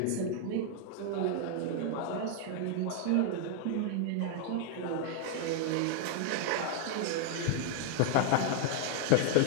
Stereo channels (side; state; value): both; different; correlation 0.00